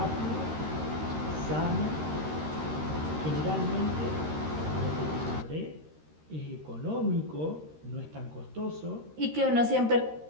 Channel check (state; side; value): late; left; 13 ms